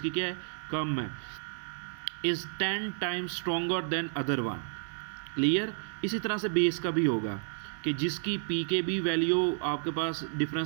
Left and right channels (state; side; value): silent; left; 57 dB below the other